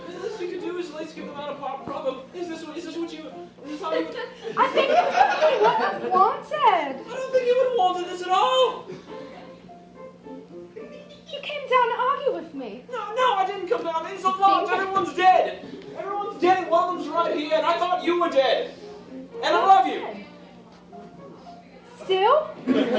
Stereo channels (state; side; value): identical; both; correlation 1.00